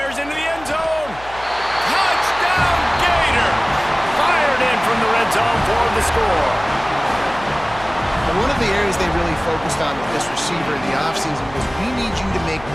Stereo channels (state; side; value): noise; left; hum, 18 dB below the sound